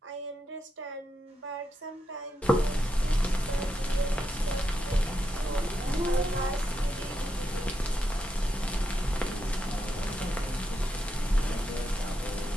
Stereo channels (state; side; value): normal; both; correlation 0.84